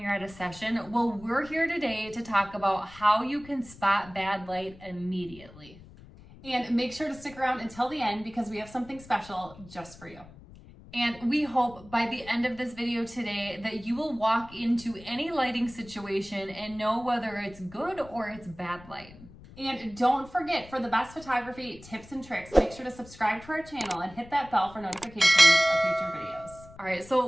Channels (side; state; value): left; noise; rumble, 20 dB below the sound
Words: at a session? Well, we're here today to talk about how you can spot bad light immediately. And make sure to stick around until the end because we have something special just for you. And we hope by the end of this video today that you will walk into any lighting situation and know whether it's good or it's bad light. And don't forget, for the best photography tips and tricks, make sure to subscribe to our channel and hit that bell for notifications of future videos. All right, so